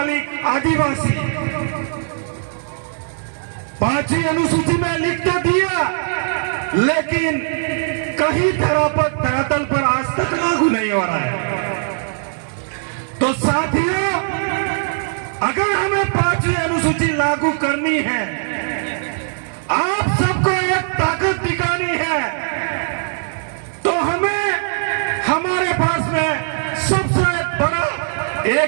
आदिवासी। 5वीं अनुसूची में लिख तो दिया, लेकिन कहीं धरातल पर आज तक लागू नहीं हो रहा है। तो साथियों, अगर हमें 5वीं अनुसूची लागू करनी है, आप सबको एक ताकत दिखानी है, तो हमें हमारे पास में सबसे बड़ा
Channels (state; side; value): silent; left; digital silence